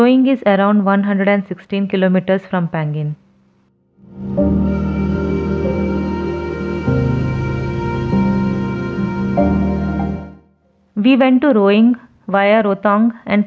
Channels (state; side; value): identical; both; correlation 1.00